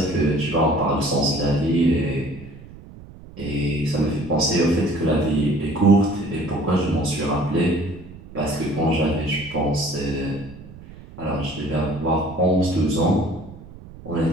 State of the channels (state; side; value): noise; right; rumble, 18 dB below the sound